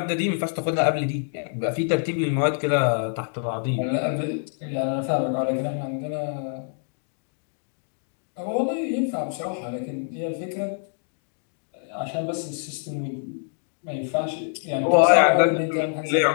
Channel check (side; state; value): right; silent; 60 dB below the other